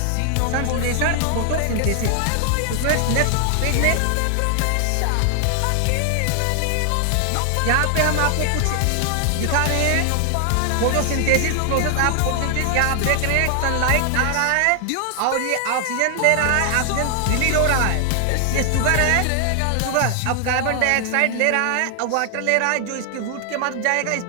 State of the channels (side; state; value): both; different; correlation 0.00